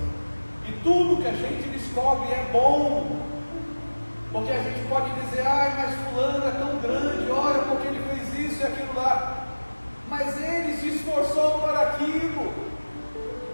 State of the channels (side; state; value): both; inverted; correlation -1.00